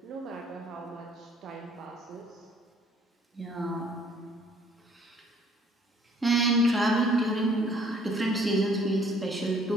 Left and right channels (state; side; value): normal; both; correlation 0.60